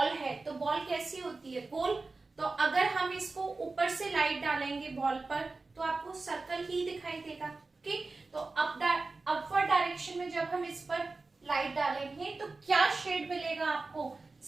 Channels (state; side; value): quieter; left; 3.7 dB